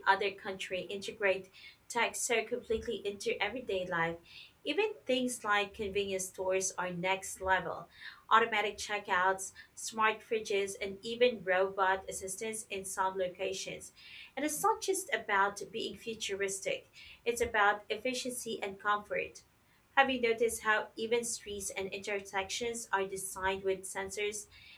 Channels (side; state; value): both; identical; correlation 1.00